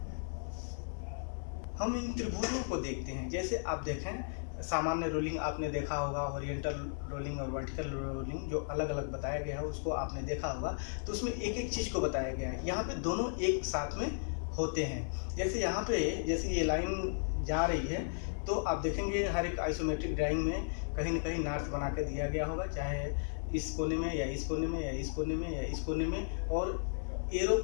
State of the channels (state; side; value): silent; right; 54 dB below the other